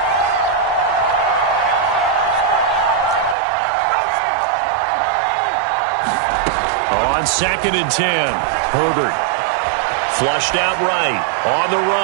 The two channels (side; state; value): left; drops out; at 3.4 s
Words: On 2nd and 10, Herbert. Flushed out right. On the